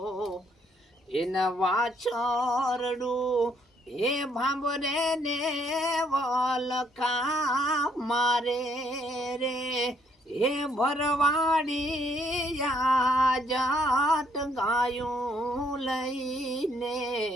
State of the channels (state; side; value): normal; both; correlation 0.69